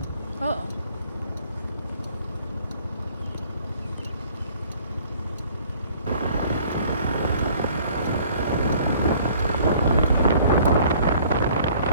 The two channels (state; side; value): inverted; both; correlation -0.55